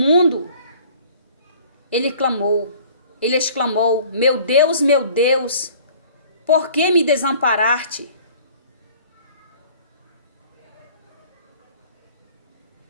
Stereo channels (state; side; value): inverted; both; correlation -0.51